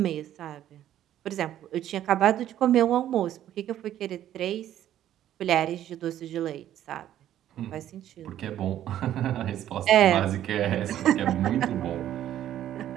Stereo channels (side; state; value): left; quieter; 11.8 dB